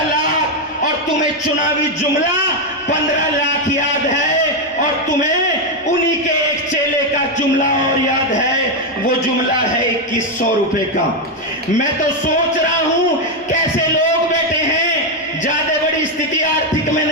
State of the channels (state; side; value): normal; both; correlation 0.04